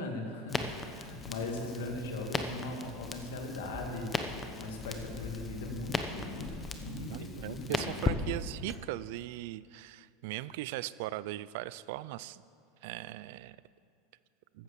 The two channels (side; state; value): both; normal; correlation 0.34